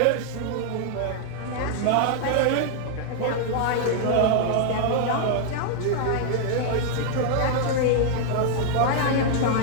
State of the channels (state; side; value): different; both; correlation 0.00